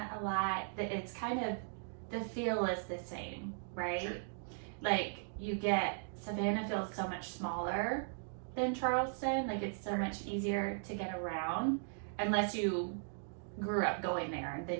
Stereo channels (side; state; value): left; silent; digital silence